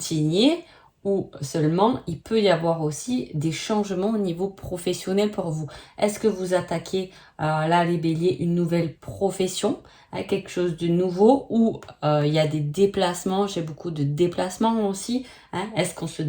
ou seulement il peut y avoir aussi des changements au niveau professionnel pour vous. Est-ce que vous attaquez là les béliers une nouvelle profession, quelque chose de nouveau ou il y a des déplacements, j'ai beaucoup de déplacements aussi. Est-ce qu'on se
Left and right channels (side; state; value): both; identical; correlation 1.00